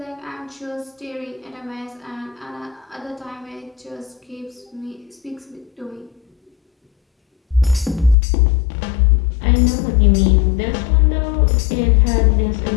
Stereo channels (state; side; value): drops out; right; at 8.2 s